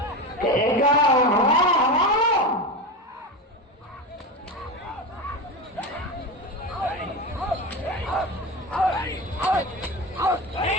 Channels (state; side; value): normal; both; correlation 0.22